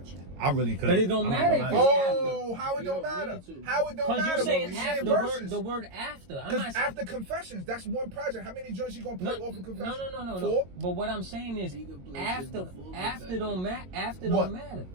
I really could. But it don't matter if Oh, how it You don't don't matter? need to. How it don't Because matter? you're when saying we after verses? the word after. I'm Because not after Confessions, that's one project. How many joints you gonna play off of Confessions? No. 4? But what I'm saying is He can play shit after before don't matter. After What? don't matter.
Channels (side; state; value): left; late; 22 ms